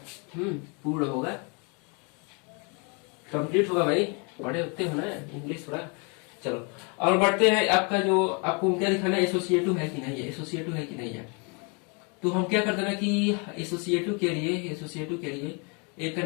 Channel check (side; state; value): right; quieter; 34.0 dB